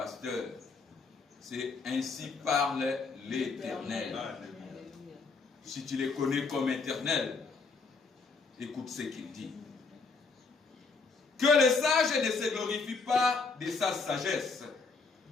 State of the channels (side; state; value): right; quieter; 4.4 dB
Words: C'est ainsi parle l'Éternel. Si tu les connais comme éternel, écoute ce qu'il dit. Que les sages ne se glorifient pas de sa sagesse.